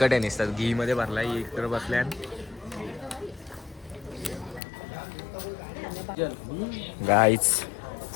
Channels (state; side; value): drops out; right; at 4.6 s